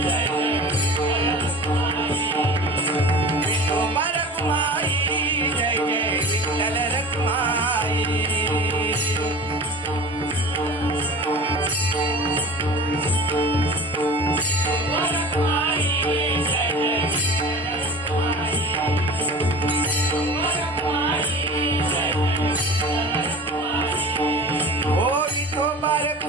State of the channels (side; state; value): both; normal; correlation 0.38